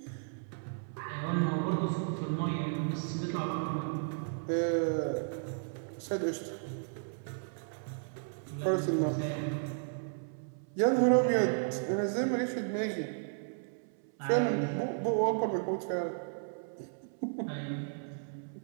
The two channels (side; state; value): left; silent; 55 dB below the other